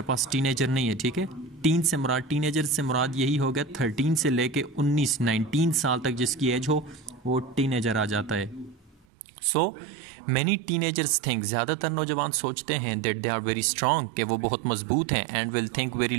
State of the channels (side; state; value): left; drops out; at 9.1 s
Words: पास टीनेजर नहीं है. ठीक है, टीन से मुराद, टीनेजर से मुराद यही हो गया 13 से लेके 19 साल तक जिसकी एज हो वो टीनेजर आ जाता है. सो मैनी टीनेजर्स थिंक, ज़्यादातर नौजवान सोचते हैं that they are very strong, कि वो बहुत मजबूत हैं, and will think very